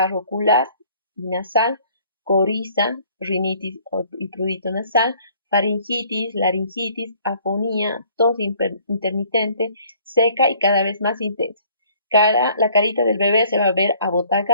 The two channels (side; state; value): both; inverted; correlation -0.58